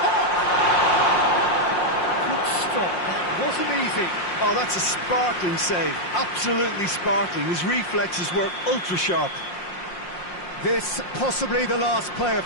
Good stop. That wasn't easy. Oh, that's a sparkling save. Absolutely sparkling. His reflexes were ultra sharp. This possibly the last play of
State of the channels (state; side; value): late; right; 5.6 ms